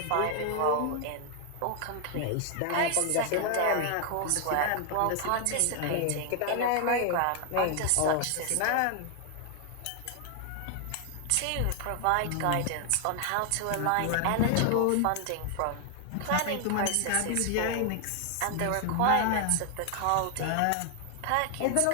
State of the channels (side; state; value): both; different; correlation 0.00